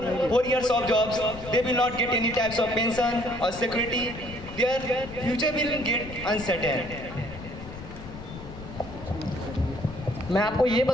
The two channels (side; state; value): left; noise; rumble, 13 dB below the sound